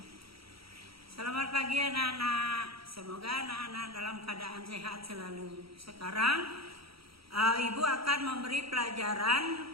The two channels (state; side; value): late; left; 0.75 ms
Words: Selamat pagi anak-anak. Semoga anak-anak dalam keadaan sehat selalu. Sekarang Ibu akan memberi pelajaran